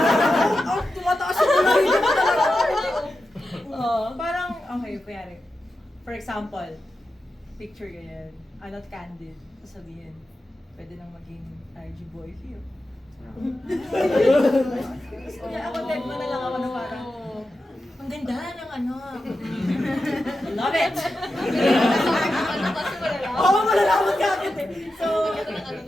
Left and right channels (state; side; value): normal; both; correlation 0.91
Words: Tumataas yung kulay niya talaga. Oo. Parang, okay, kuyari. For example, picture ganyan, not candid, sabihin, pwede nang maging RG boy feel. Kaya ako dead mo na lang ako na parang, ang ganda ng love it! Oo, malalaman ka agad eh. So,